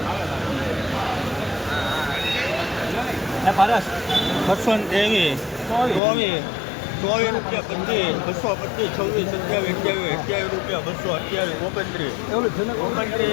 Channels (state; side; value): drops out; right; at 6.0 s